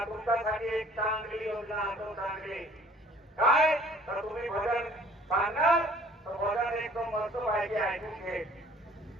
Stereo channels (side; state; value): both; normal; correlation 0.54